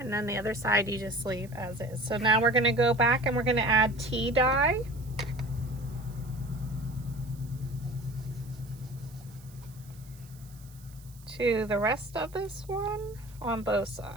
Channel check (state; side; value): noise; right; hiss, 24 dB below the sound